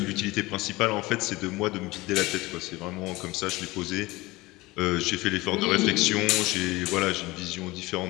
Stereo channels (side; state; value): right; quieter; 20.8 dB